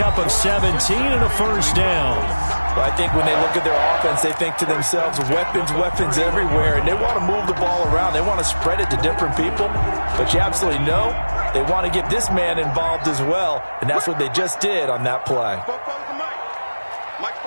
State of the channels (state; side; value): inverted; both; correlation -1.00